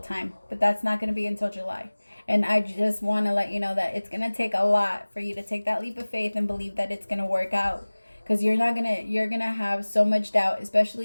But that's not going to be until July. And I just want to let you know that it's going to take a lot for you to take that leap of faith and believe that it's going to work out. Because you're going to have so much doubt,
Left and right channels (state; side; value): inverted; both; correlation -1.00